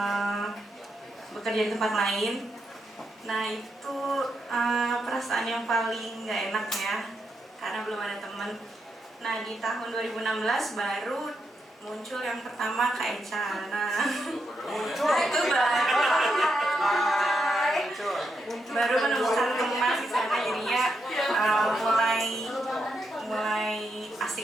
bekerja di tempat lain. Nah, itu perasaan yang paling gak enak ya, karena belum ada teman. Nah, di tahun 2016 baru muncul yang pertama Kak Eca. Nah, itu baru menemukan teman di sana, jadinya mulai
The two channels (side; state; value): both; normal; correlation 0.83